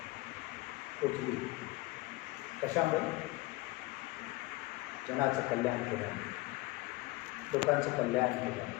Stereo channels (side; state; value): right; quieter; 21.1 dB